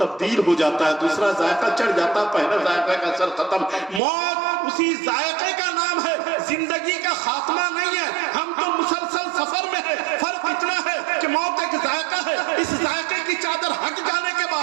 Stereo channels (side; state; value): left; drops out; at 4.0 s